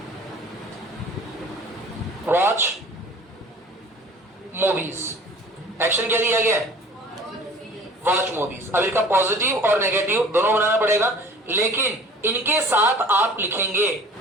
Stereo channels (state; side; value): normal; both; correlation 0.47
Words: वॉच मूवीज। एक्शन क्या दिया गया है? Watch movies. अब इसका पॉजिटिव और नेगेटिव दोनों बनाना पड़ेगा, लेकिन इनके साथ आप लिखेंगे